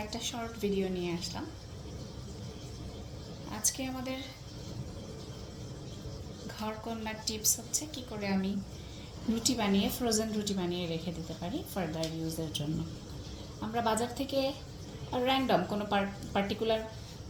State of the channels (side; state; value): both; identical; correlation 1.00